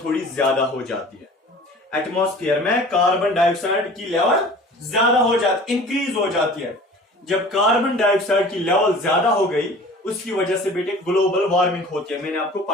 थोड़ी ज्यादा हो जाती है, एटमॉस्फेयर में कार्बन डाइऑक्साइड की लेवल ज्यादा हो जाती, इंक्रीज हो जाती है। जब कार्बन डाइऑक्साइड की लेवल ज्यादा हो गई, उसकी वजह से बेटे ग्लोबल वार्मिंग होती है, मैंने आपको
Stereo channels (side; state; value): both; normal; correlation 0.44